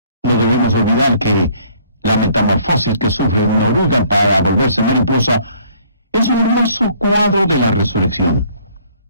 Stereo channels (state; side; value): inverted; both; correlation -0.60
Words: No debemos olvidar que la metamorfosis que sufre una oruga para volverse mariposa es un hermoso cuadro de la resurrección.